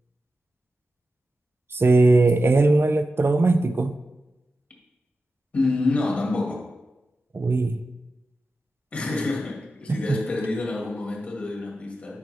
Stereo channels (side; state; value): both; normal; correlation 0.91